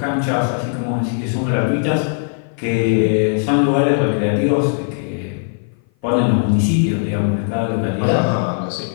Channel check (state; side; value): silent; right; 56 dB below the other